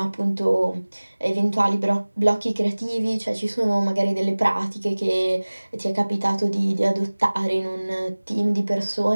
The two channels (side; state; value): both; inverted; correlation -1.00